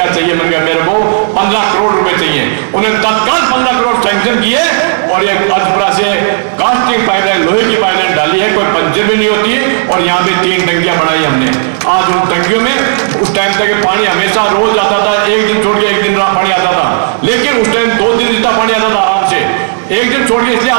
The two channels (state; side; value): silent; left; digital silence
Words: चाहिए, मैंने कहा मेरे को 15 करोड़ रुपए चाहिए। उन्हें तत्काल 15 करोड़ सैंक्शन किए और ये अजपरा से कास्टिंग पाइपलाइन, लोहे की पाइपलाइन डाली है, कोई पंचर भी नहीं होती। और यहाँ पे 3 टंकियां बनाई हमने। आज उन टंकियों में उस टाइम तक पानी हमेशा रोज आता था, एक दिन छोड़ के एक दिन पानी आता था, लेकिन उस टाइम 2 दिन जितना पानी आता था आराम से। एक दिन छोड़ के इसलिए